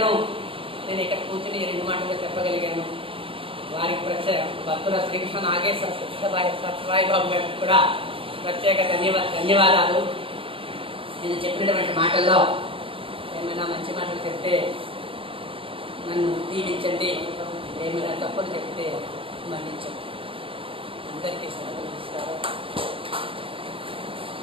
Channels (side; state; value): left; late; 0.26 ms